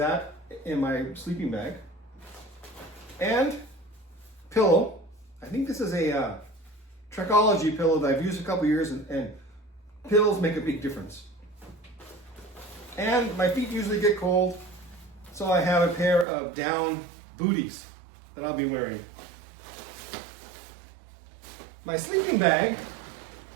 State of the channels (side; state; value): left; drops out; at 16.2 s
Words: in my sleeping bag. And pillow. I think this is a Trekology pillow that I've used a couple years, and pillows make a big difference. And my feet usually get cold, so I have a pair of down booties that I'll be wearing. My sleeping bag,